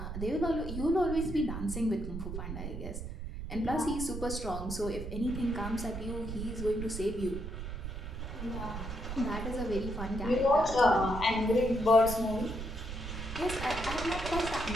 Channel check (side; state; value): right; noise; rumble, 7 dB below the sound